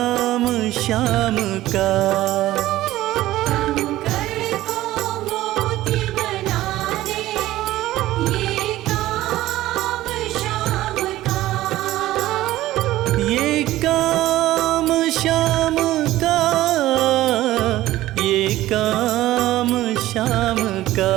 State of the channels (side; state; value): left; quieter; 15.6 dB